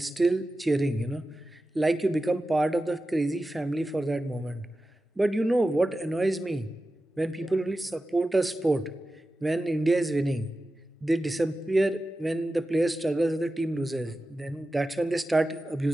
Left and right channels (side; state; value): both; normal; correlation 0.93